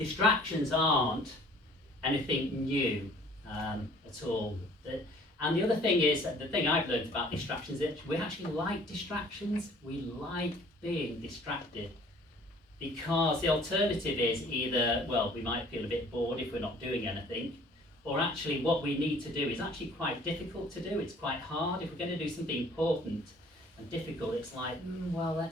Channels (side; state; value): both; normal; correlation 0.54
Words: aren't anything new at all. And the other thing is, the thing I've learned about distractions is that we actually like distractions. We like being distracted. Because the alternative is either, well, we might feel a bit bored if we're not doing anything, or actually what we need to do is actually quite difficult to do. It's quite hard. If we're going to do something important and difficult, it's like, well,